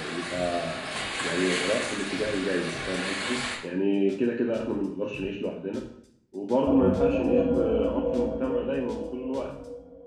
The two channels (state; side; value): identical; both; correlation 1.00